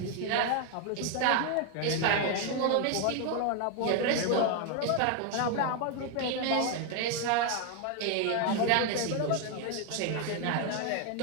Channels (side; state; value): both; different; correlation 0.01